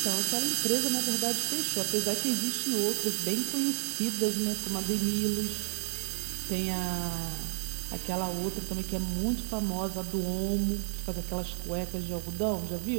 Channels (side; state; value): left; silent; 57 dB below the other